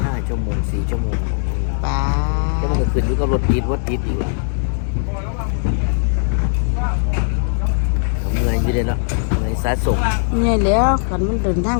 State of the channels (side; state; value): right; silent; digital silence